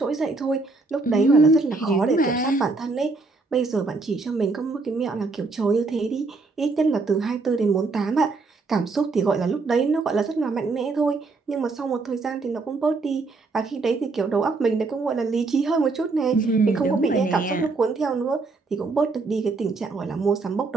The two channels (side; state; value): left; quieter; 3.8 dB